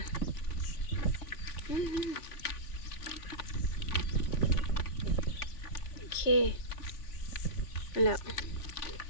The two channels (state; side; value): late; right; 3.5 ms